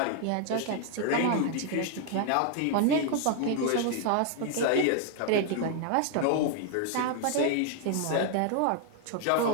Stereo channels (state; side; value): different; both; correlation 0.00